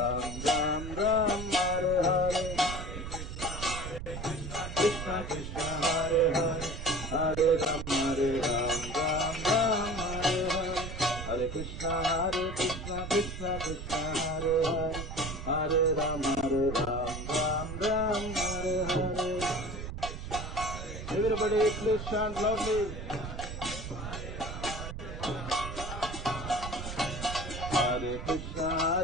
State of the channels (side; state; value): right; noise; rumble, 7 dB below the sound